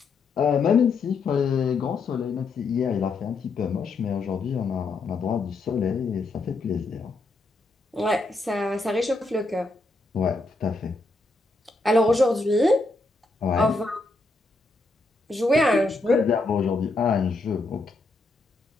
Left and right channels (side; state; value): right; quieter; 3.5 dB